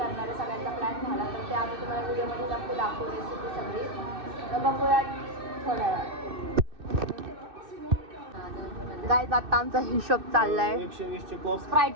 आहे, सगळ्यांचा प्लॅन झाला. तर ते आम्ही तुम्हाला व्हिडिओमध्ये नक्की दाखवू, रेसिपी सगळी. तर बघूया थोड्या वेळात. गाईज आता आमचा हिशोब चाललाय. 120चे कोक, स्प्राईट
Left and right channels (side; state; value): left; late; 2.6 ms